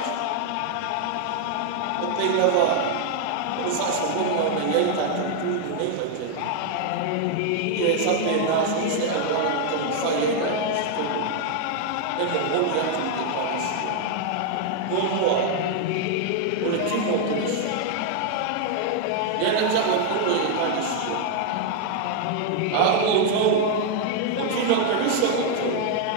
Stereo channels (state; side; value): different; both; correlation 0.00